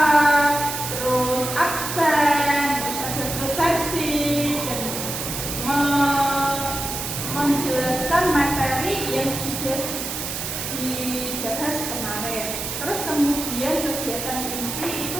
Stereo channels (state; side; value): noise; right; hiss, 5 dB below the sound